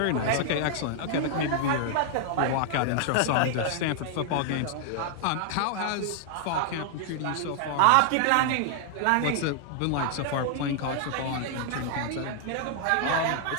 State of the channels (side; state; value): both; different; correlation -0.01